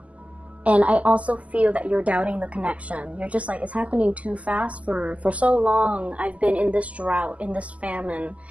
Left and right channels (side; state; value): left; late; 0.069 ms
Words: And I also feel that you're doubting the connection. You're just like, it's happening too fast. For so long I've been in this drought, in this famine,